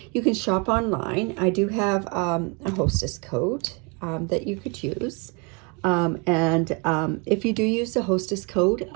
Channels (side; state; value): left; quieter; 32.3 dB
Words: You can shop online. I do have a hostess code that you could use. If you do use the hostess code,